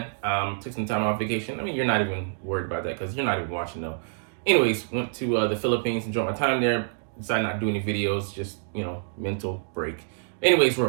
took some time off vacation. I mean, you're not even worried about that because you're not even watching, though. Anyways, went to the Philippines, enjoyed my time there. Decided not to do any videos, just, mental break. Anyways, we're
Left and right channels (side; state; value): left; silent; digital silence